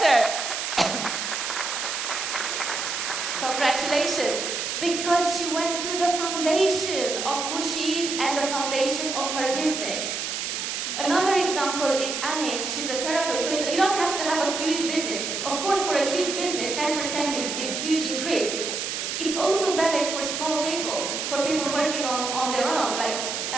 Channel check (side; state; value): right; noise; hiss, 3 dB below the sound